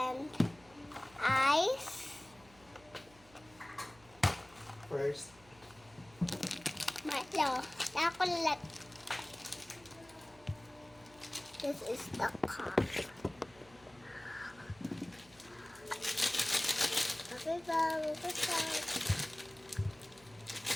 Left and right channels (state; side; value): noise; right; hum, 25 dB below the sound